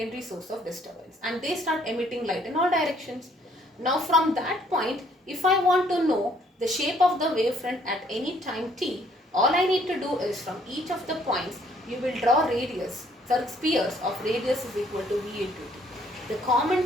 source of disturbance, and they start emitting light in all directions. Now from that point, if I want to know the shape of the wavefront at any time t, all I need to do is from each of the points, you will draw radius, spheres of radius is equal to v into t. The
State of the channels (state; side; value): normal; both; correlation 0.64